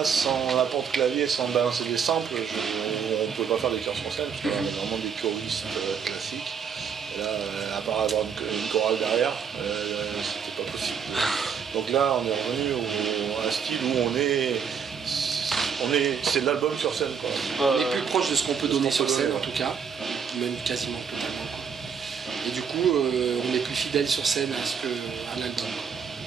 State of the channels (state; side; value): quieter; left; 6.8 dB